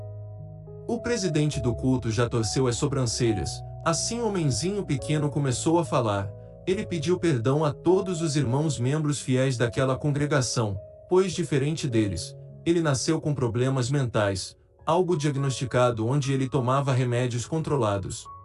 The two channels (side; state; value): both; identical; correlation 1.00